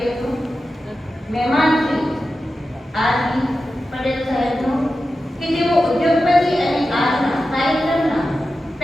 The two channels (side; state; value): both; normal; correlation 0.92